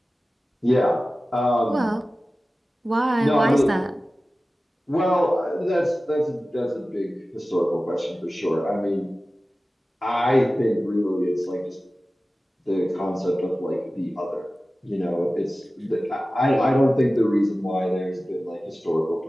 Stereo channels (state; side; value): normal; both; correlation 0.96